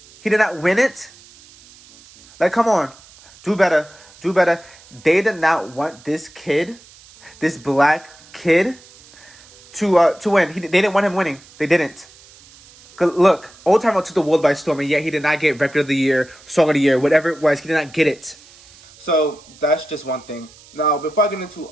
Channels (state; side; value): noise; right; hiss, 24 dB below the sound